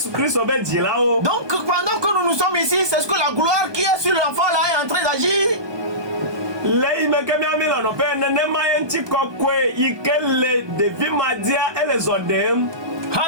Kristo be jila o. Donc pendant que nous sommes ici, c'est ce que la gloire qui est sur l'enfant là est en train d'agir. Le ime ke mi amila no pe ne ma ye nti koko ike le devi madia ele zodem.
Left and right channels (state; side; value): late; left; 1.2 ms